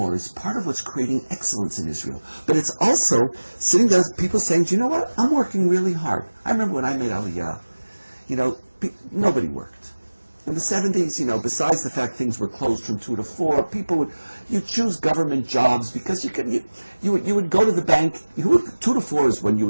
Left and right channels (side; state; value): both; inverted; correlation -1.00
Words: is part of what's creating excellence in Israel. But it's also sitting there, people saying, do you know what? I'm working really hard. I remember when I made Aliyah, nobody worked. In the 70s, besides the fact things were closed from 2 to 4, you choose government jobs because you would go to the bank. 2 to 4 is when you